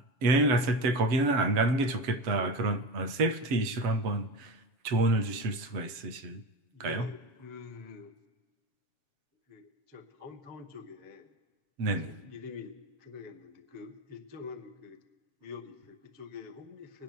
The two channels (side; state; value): left; late; 7.3 ms